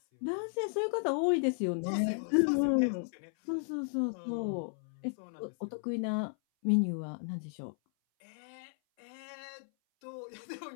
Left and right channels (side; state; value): right; silent; 55 dB below the other